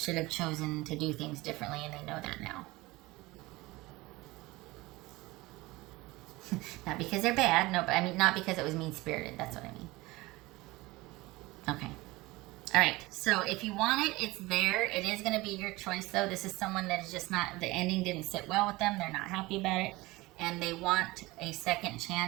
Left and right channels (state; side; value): quieter; left; 20.9 dB